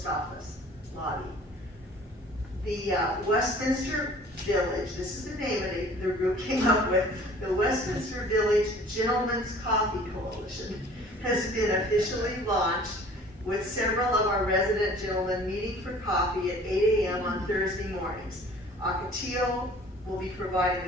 office lobby. The Westminster Village, this is the name of the group came up with, the Westminster Village Gentlemen's Coffee Coalition has been officially launched, with several of our resident gentlemen meeting for coffee at 8 a.m. on Thursday mornings. Ocotillo will be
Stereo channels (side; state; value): both; normal; correlation 0.49